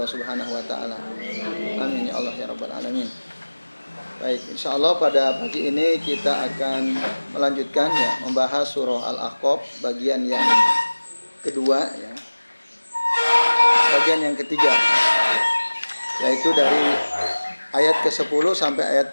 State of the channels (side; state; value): both; inverted; correlation -1.00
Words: Subhanahu wa taala. Amin ya Allah ya rabbal alamin. Baik, insyaallah pada pagi ini kita akan melanjutkan ya membahas surah Al-Ahqaf bagian yang kedua ya. Bagian yang ketiga, yaitu dari ayat ke-10 sampai ayat